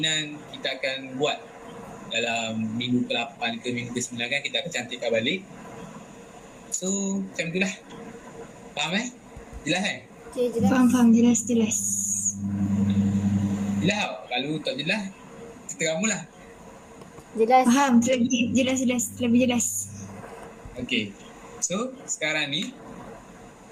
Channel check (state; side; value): identical; both; correlation 1.00